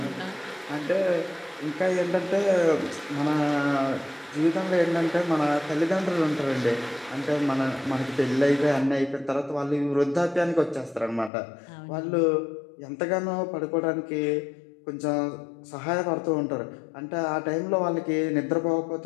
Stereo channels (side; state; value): right; drops out; at 11.3 s